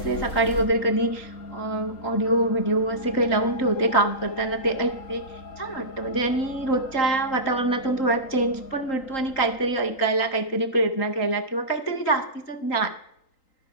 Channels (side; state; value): right; late; 3.8 ms